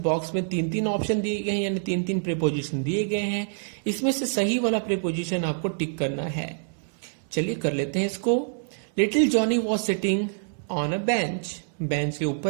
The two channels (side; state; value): left; silent; 61 dB below the other